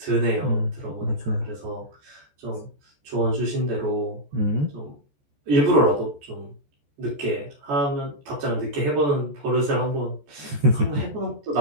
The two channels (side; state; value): left; late; 14 ms